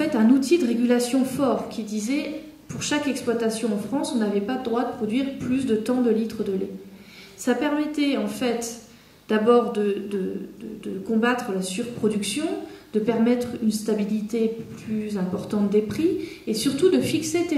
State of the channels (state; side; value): identical; both; correlation 1.00